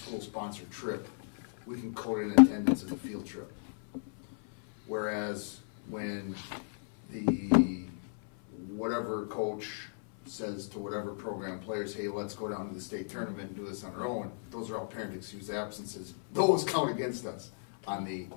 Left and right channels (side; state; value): right; silent; 55 dB below the other